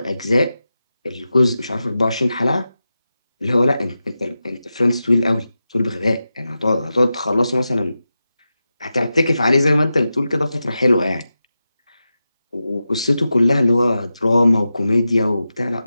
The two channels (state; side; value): inverted; both; correlation -0.92